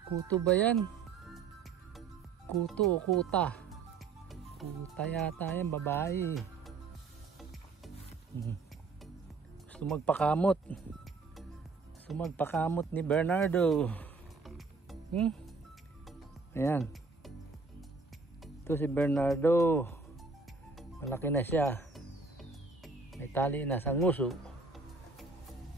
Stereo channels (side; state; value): left; quieter; 4.3 dB